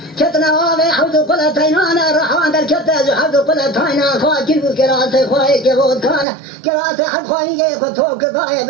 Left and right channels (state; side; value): drops out; left; at 6.2 s